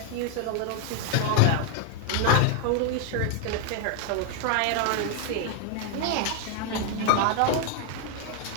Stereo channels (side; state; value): both; different; correlation 0.00